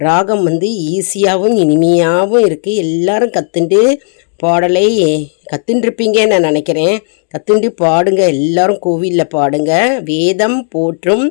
ராகம் ஈஸியாகவும் இனிமையாகவும் இருக்குது. எல்லாரும் கற்றுண்டு பாடலை கற்றுட்டுருப்பீங்கன்னு நான் நினைக்கிறேன். கற்றுண்டு பாடுங்க, எல்லாரும் கோவிலில் பாடுங்க. வேதம் போற்றும்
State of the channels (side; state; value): right; silent; 65 dB below the other